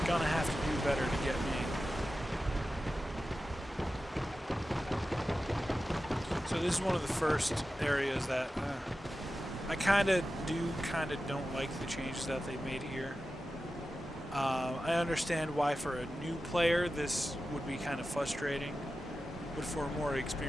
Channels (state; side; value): normal; both; correlation 0.93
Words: Gonna have to do better to get me. So this is one of the first areas that I kind of don't like the changes that they made here. I understand why for a new player this would be kind of frustrating, but for a more